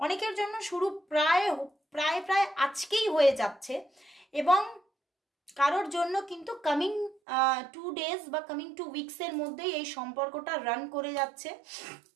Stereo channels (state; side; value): drops out; left; at 7.2 s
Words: অনেকের জন্য, শুরু প্রায় প্রায় প্রায় আজকেই হয়ে যাচ্ছে। এবং কারোর জন্য কিন্তু কামিং 2 ডেজ বা কামিং 2 উইকসের মধ্যেই এই সম্পর্কটা রান করে যাচ্ছে